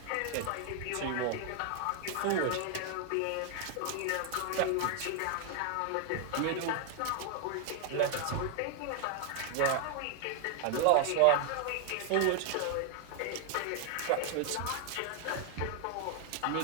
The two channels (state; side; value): different; both; correlation 0.00